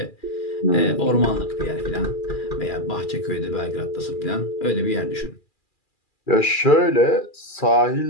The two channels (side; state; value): right; late; 2.4 ms